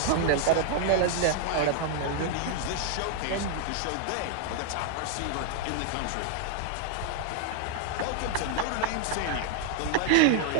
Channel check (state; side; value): different; both; correlation 0.00